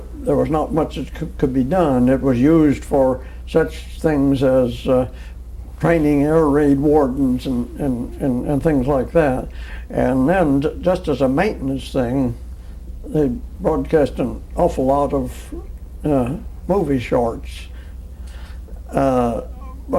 was not much that could be done. It was used for such things as training air raid wardens and things like that. And then just as a maintenance thing, they broadcast an awful lot of movie shorts.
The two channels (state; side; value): identical; both; correlation 1.00